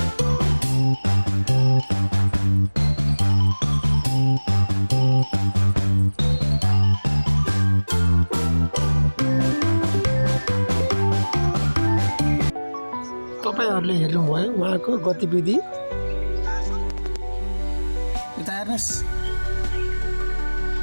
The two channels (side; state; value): both; inverted; correlation -1.00